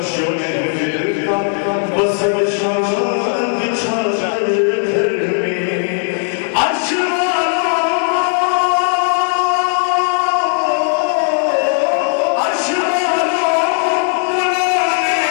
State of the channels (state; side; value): silent; right; 56 dB below the other